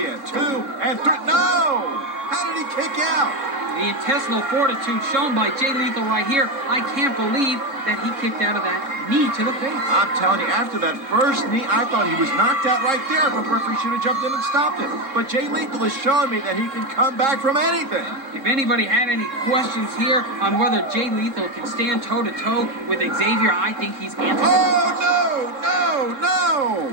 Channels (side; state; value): left; late; 3.7 ms